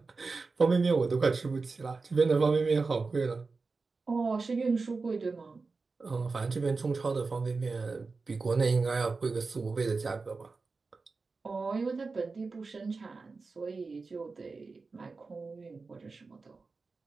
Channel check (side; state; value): left; quieter; 4.2 dB